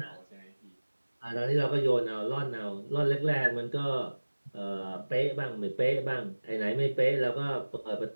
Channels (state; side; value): inverted; both; correlation -1.00